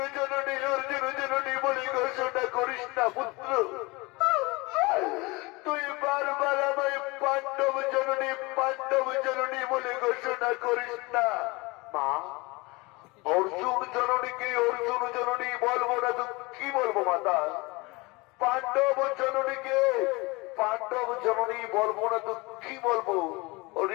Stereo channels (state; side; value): quieter; right; 24.6 dB